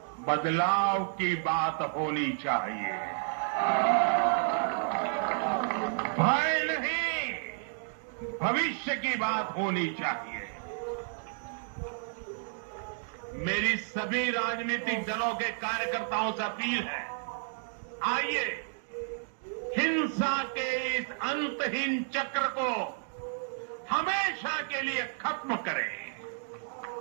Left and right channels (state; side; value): silent; left; digital silence